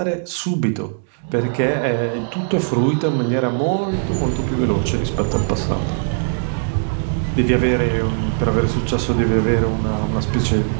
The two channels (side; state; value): left; silent; digital silence